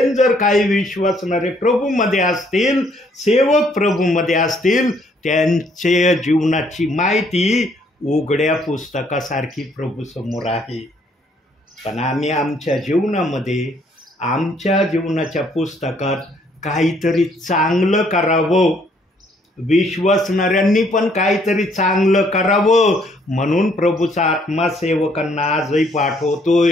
जर काही विश्वासणारे प्रभूमध्ये असतील, सेवक प्रभूमध्ये असतील, त्यांच्या जीवनाची माहिती उघड्या पुस्तकासारखी प्रभूसमोर आहे. पण आम्ही आमच्या जीवनामध्ये, आमच्या जीवनाच्या पुस्तकात काहीतरी चांगलं करावं, विश्वासणाऱ्यांनी पण काहीतरी चांगलं करावं म्हणून प्रभूचा आत्मा सेवकांना आजही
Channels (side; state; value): both; normal; correlation 0.66